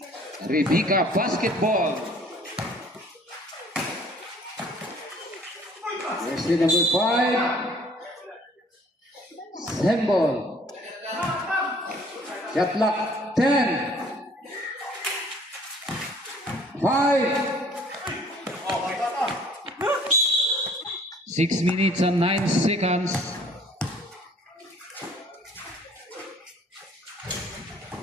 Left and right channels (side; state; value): both; normal; correlation 0.56